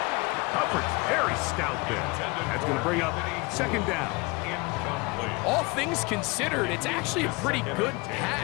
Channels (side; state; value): right; quieter; 26.0 dB